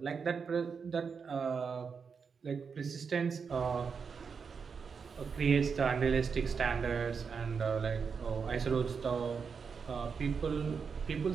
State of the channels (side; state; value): left; quieter; 5.8 dB